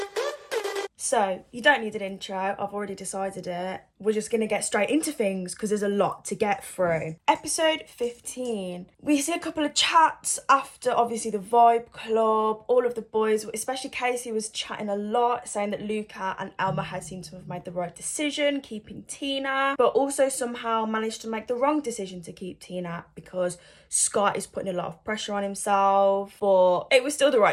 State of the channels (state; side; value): identical; both; correlation 1.00